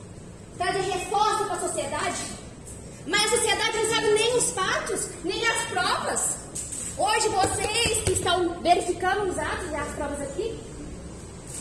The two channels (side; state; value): both; identical; correlation 1.00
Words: trazer reforço para a sociedade, mas a sociedade não sabe nem os fatos, nem as provas. Hoje vocês que estão verificando os atos e as provas aqui,